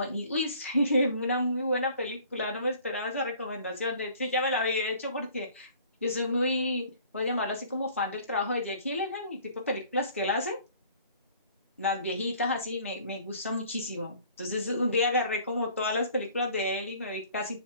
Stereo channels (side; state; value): both; inverted; correlation -0.52